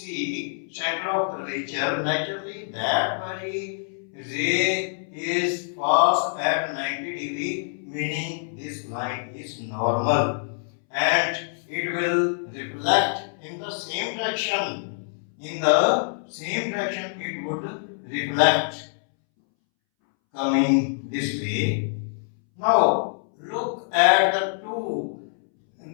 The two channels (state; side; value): silent; right; 61 dB below the other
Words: center of curvature, naturally that very ray is passed at 90 degree, meaning this line is normal, and it will reflect in the same direction. In the same direction it would reflect, coming this way. Now look at the two